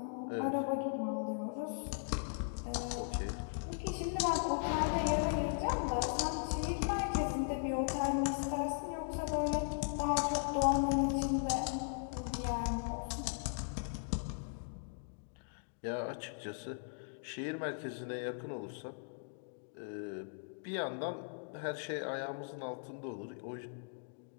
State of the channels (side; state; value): right; silent; digital silence